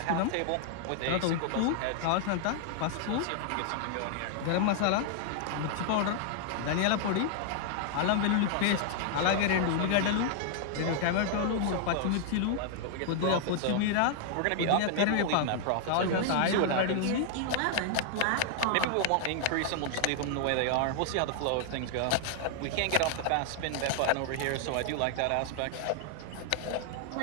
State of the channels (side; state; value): both; different; correlation 0.00